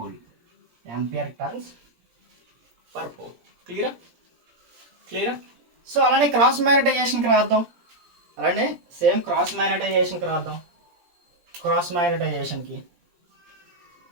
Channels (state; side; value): late; left; 17 ms